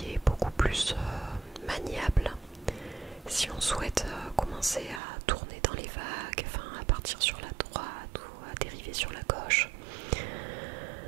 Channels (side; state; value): left; drops out; at 5.0 s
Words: est beaucoup plus maniable si on souhaite commencer à tourner dans les vagues, enfin à partir sur la droite ou à dériver sur la gauche.